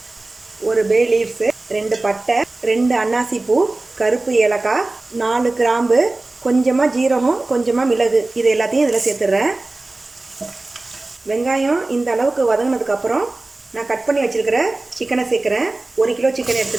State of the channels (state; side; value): quieter; left; 3.0 dB